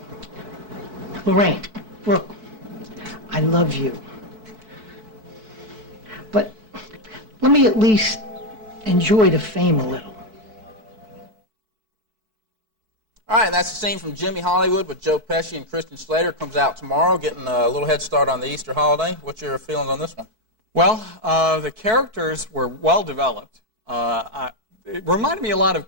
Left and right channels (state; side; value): late; left; 4.6 ms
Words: Lorraine, look, I love you. But let me at least enjoy the fame a little. All right, that's the scene from Jimmy Hollywood with Joe Pesci and Christian Slater. Comes out tomorrow, getting a little head start on the Easter holiday. What's your feelings on this one? Well, the characters were well developed. It reminded me a lot